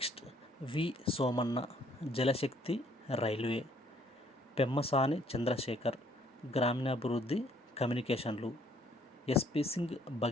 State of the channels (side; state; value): both; normal; correlation 0.64